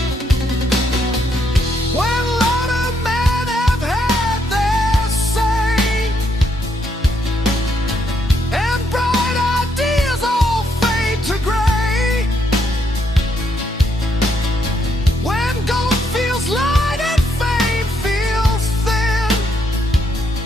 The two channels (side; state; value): both; normal; correlation 0.75